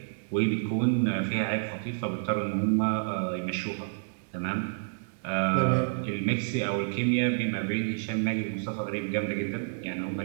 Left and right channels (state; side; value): silent; left; digital silence